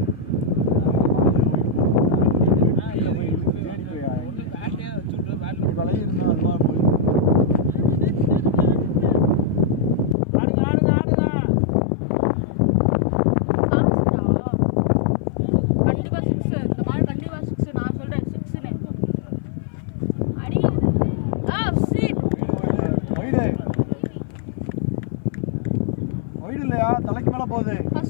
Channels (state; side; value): drops out; right; at 10.2 s